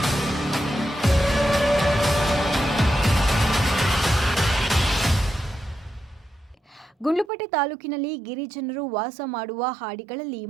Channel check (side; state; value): left; drops out; at 7.3 s